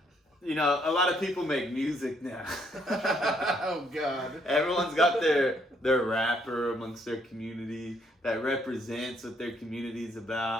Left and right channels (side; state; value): both; normal; correlation 0.70